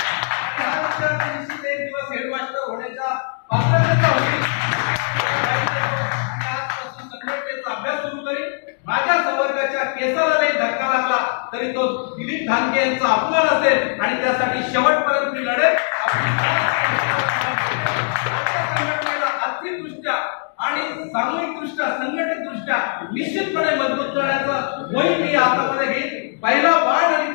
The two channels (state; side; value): silent; right; digital silence